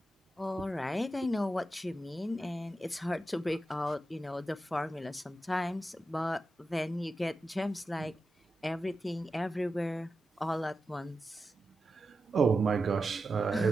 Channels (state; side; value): normal; both; correlation 0.90